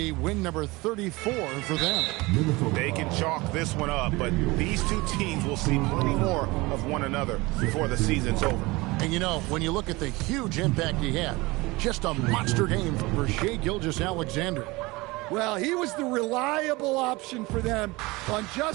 win number 34 for them. They can chalk this one up, but these two teams will see plenty more of one another before the season's over. And you know, when you look at the huge impact he had, just a monster game for Shai Gilgeous-Alexander. Well, he was the reliable option for them on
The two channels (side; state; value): left; quieter; 22.6 dB